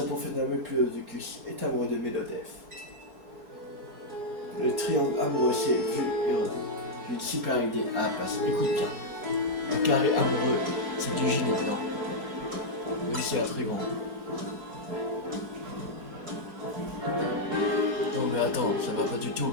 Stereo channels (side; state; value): left; late; 3.6 ms